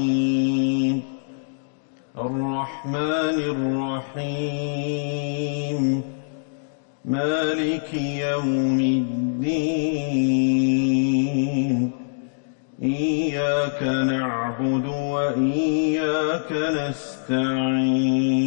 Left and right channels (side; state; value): right; silent; digital silence